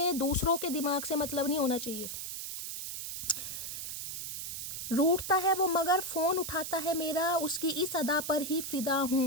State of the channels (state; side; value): noise; right; hiss, 6 dB below the sound